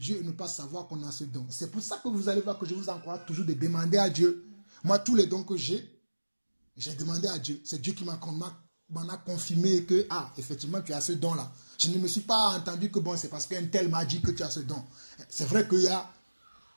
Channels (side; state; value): both; inverted; correlation -1.00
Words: et ne pas savoir qu'on a ce don. C'est pour ça que vous allez voir que je vous encourage toujours de demander à Dieu. Moi, tous les dons que j'ai demandé à Dieu. C'est Dieu qui m'en a confirmé que, effectivement, tu as ce don-là. Je ne me suis pas entendu que, bon, c'est parce qu'un tel m'a dit que tu as ce don. C'est vrai qu'il y a